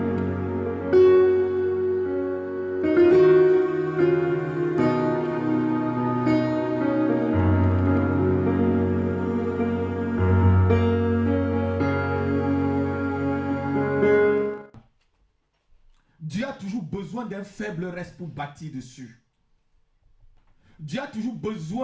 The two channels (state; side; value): identical; both; correlation 1.00